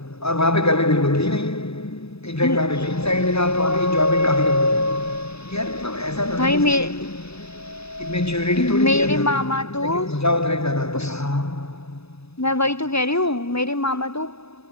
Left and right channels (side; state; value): right; late; 0.79 ms